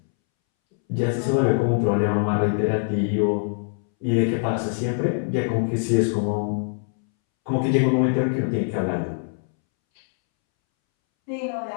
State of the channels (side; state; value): right; silent; 63 dB below the other